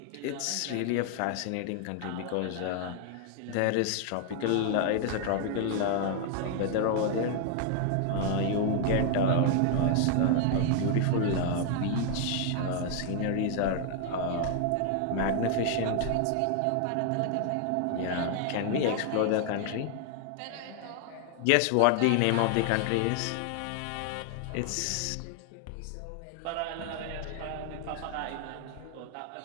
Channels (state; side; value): different; both; correlation 0.00